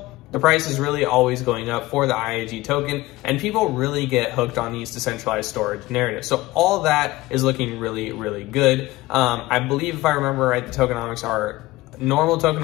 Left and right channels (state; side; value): quieter; right; 18.6 dB